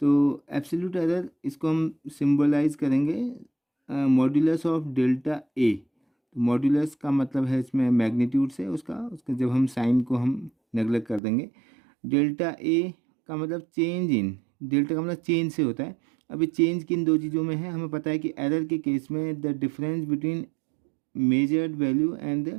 तो एब्सोल्यूट एरर इसको हम सिंबलाइज करेंगे मॉड्यूलस ऑफ डेल्टा ए। तो मॉड्यूलस का मतलब है इसमें मैग्नीट्यूड से उसका जब हम साइन को हम नेगलेक्ट कर देंगे। डेल्टा ए का मतलब चेंज इन, डेल्टा का मतलब चेंज से होता है। अभी चेंज किन दो चीज़ों में है, हमें पता है कि एरर के केस में the difference between measured value and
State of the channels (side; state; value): left; drops out; at 11.2 s